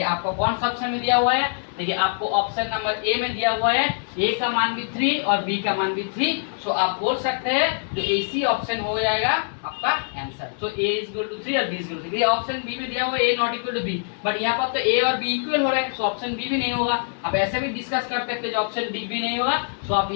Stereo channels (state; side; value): silent; right; digital silence